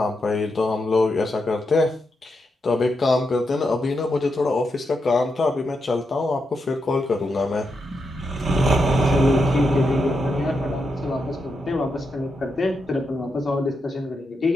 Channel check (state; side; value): normal; both; correlation 0.84